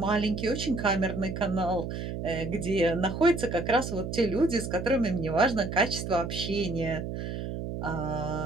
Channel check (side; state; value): right; noise; hum, 5 dB below the sound